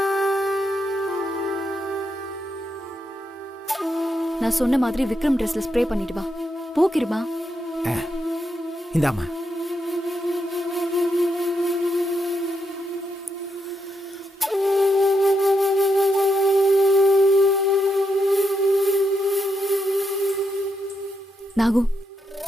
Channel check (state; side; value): normal; both; correlation 0.81